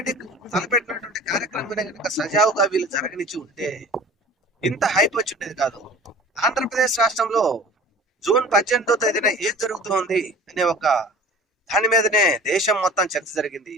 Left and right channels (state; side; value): normal; both; correlation 0.43